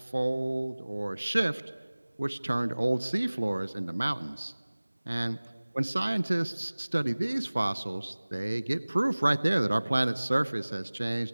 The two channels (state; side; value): inverted; both; correlation -1.00